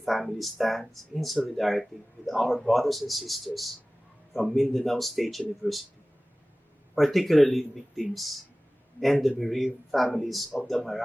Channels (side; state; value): both; normal; correlation 0.98